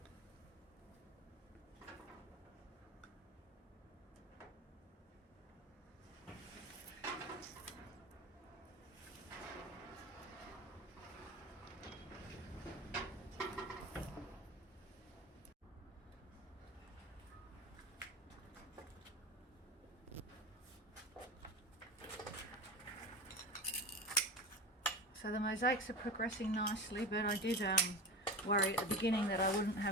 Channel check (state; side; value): normal; both; correlation 0.27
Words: So the mosaics are progressing nicely, but I did worry at the beginning that I wouldn't